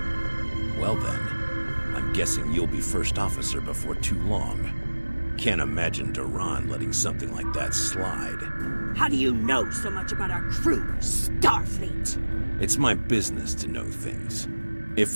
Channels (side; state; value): both; inverted; correlation -1.00